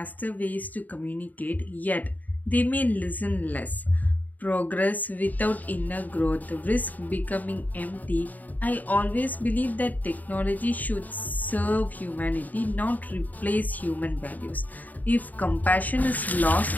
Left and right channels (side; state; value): right; late; 0.081 ms